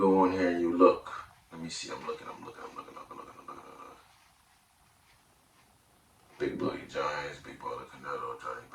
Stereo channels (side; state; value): both; identical; correlation 1.00